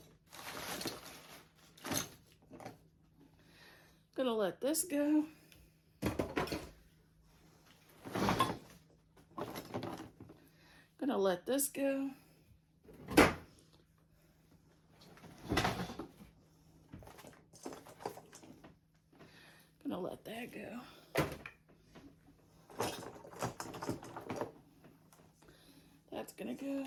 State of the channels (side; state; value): both; identical; correlation 1.00